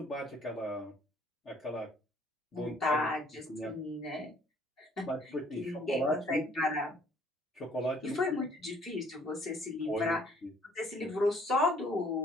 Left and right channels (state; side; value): normal; both; correlation 0.60